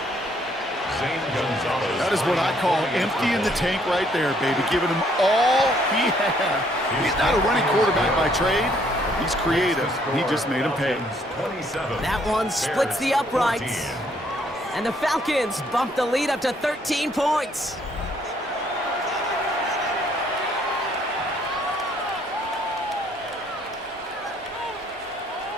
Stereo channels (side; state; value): both; normal; correlation 0.67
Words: That is what I call emptying the tank right there, baby. Giving him all he had. He's not a running quarterback by trade. He's creative. He just made him pay. That one splits the uprights. And the Falcons bump the lead up to 13 points.